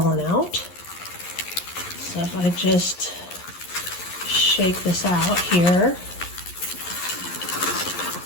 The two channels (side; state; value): right; late; 11 ms